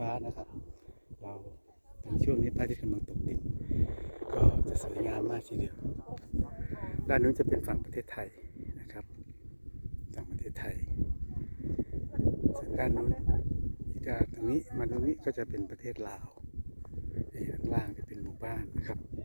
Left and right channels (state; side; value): inverted; both; correlation -1.00